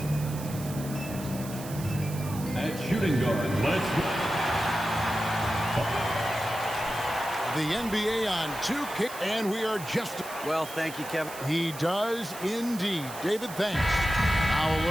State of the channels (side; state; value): right; noise; hiss, 13 dB below the sound